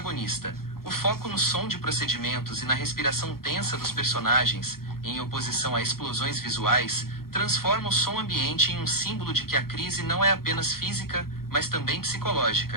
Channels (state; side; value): late; right; 0.93 ms